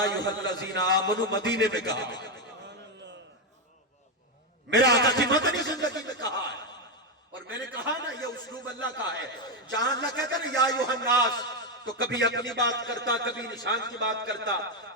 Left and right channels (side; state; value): both; normal; correlation 0.06